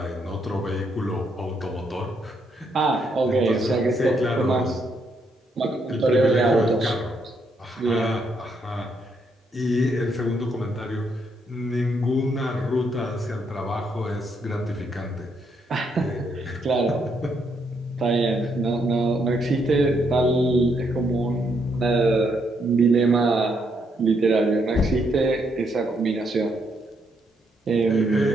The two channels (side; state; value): both; normal; correlation 0.75